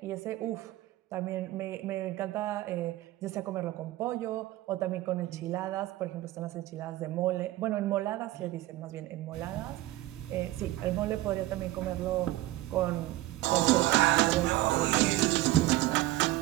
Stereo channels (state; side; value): quieter; left; 16.8 dB